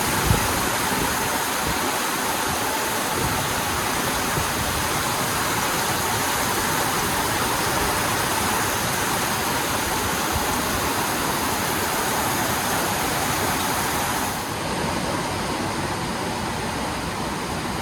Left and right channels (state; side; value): identical; both; correlation 1.00